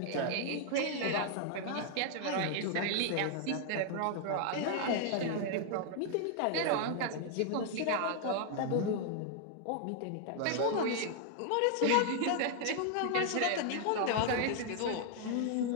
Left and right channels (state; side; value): different; both; correlation 0.00